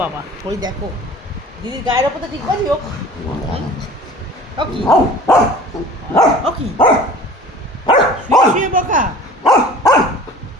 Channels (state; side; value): normal; both; correlation 0.44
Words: বাবা, ওই দেখো দিদির গায়ের ওপর তো ঠিক বাজি। ও কি, ও কি শুয়ে শুয়ে বকা?